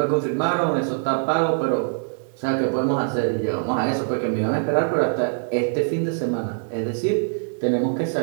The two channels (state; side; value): silent; left; digital silence